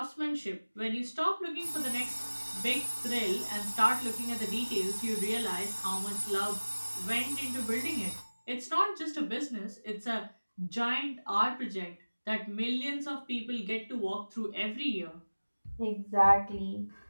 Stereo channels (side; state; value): both; inverted; correlation -1.00